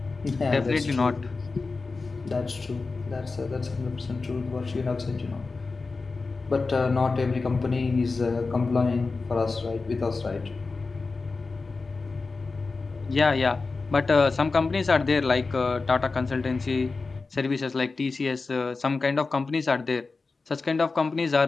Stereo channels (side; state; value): right; quieter; 4.0 dB